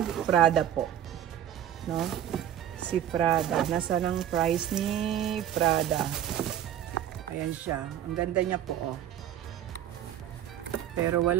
Prada po. No? Si Prada. Nasaan ang price ni Prada? Ayan siya. Ang ganda niya po, oh. Pero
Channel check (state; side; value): quieter; left; 10.9 dB